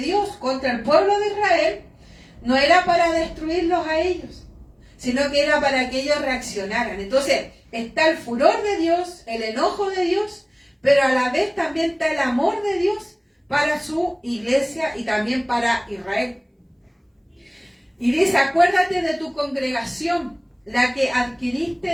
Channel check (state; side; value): identical; both; correlation 1.00